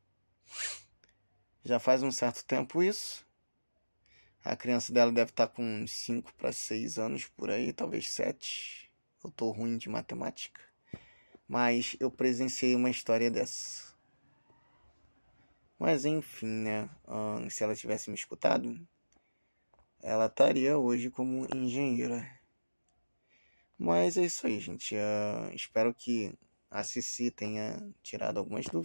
Já faz um certo tempo isso. A criança dela deve estar com uns 5 para 6 anos por aí, talvez 7. Eu tô ruim de matemática. Mas eu presenciei uma história dessa. Mas enfim, né? Se ela tivesse me escutado, ela estaria hoje como engenheira. Mas é isso aí, gente. Espero que a Cici tenha tirado algumas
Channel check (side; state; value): both; inverted; correlation -1.00